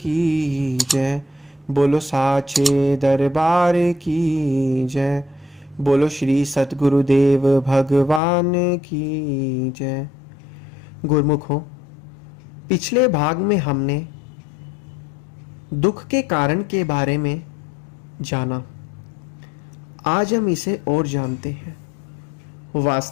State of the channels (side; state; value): right; drops out; at 8.2 s